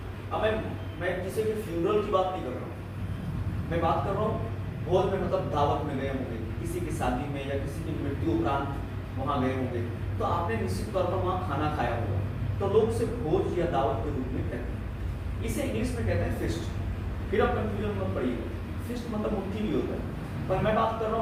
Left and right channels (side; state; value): both; identical; correlation 1.00